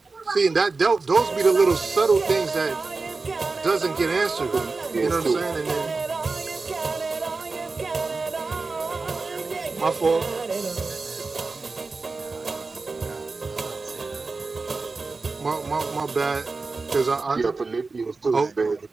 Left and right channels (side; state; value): left; quieter; 3.9 dB